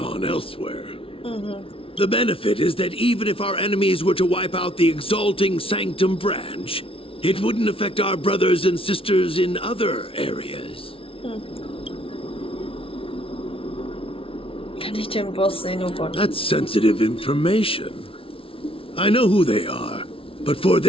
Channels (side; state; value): right; late; 0.26 ms